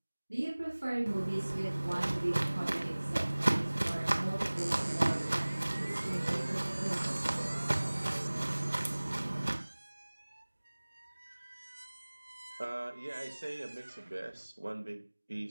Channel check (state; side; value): inverted; both; correlation -1.00